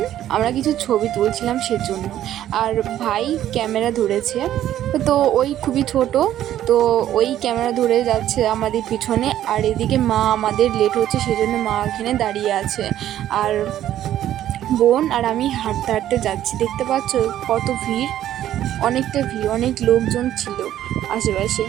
আমরা কিছু ছবি তুলছিলাম সেজন্য। আর ভাই ক্যামেরা ধরেছে, তো ওই খুবই ছোট, তো ওই ক্যামেরা ধরে যাচ্ছে আমাদের পিছনে। আর এদিকে মা, আমাদের লেট হচ্ছে সেজন্য মা এখানে দাঁড়িয়ে আছে। আর বোন আর আমি হাঁটতে হাঁটতে যাচ্ছি, দেখতে পাচ্ছ কত ভিড়, অনেকটা ভিড়, অনেক লোকজন ছিল আশেপাশে,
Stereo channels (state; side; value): quieter; left; 12.1 dB